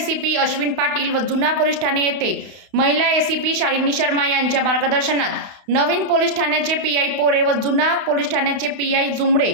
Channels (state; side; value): late; left; 31 ms